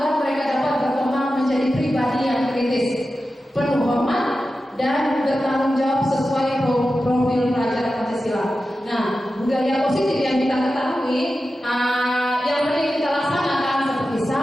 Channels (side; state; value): both; normal; correlation 0.92